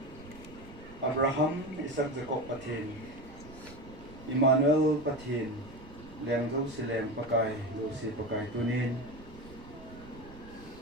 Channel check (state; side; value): noise; right; rumble, 17 dB below the sound